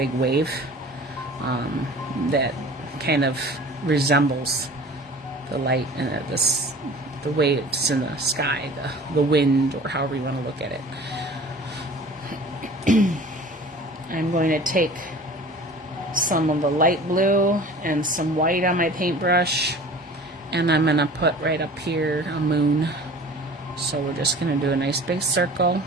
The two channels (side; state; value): both; normal; correlation 0.43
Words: wave that kind of resembles the light and the waves in the sky, the wind, or however you want to look at it. I'm going to take some of the light blue and some white on my paintbrush, and I'm going to put right up here a moon. So we're just going to do a nice big circle.